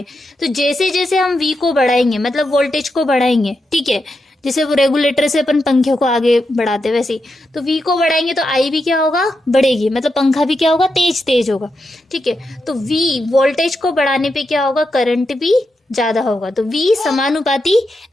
तो जैसे जैसे हम वी को बढ़ाएंगे मतलब वोल्टेज को बढ़ाएंगे, ठीक है, जैसे वो रेगुलेटर से अपन पंखे को आगे बढ़ाते वैसे ही, तो वी को बढ़ाएंगे तो आई भी क्या होगा, बढ़ेगी, मतलब पंखा भी क्या होगा, तेज तेज होगा, ठीक है। तो वी वोल्टेज को बढ़ाने पे क्या होगा, करंट भी ज्यादा होगा, तो वी समानुपाती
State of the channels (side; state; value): both; normal; correlation 0.86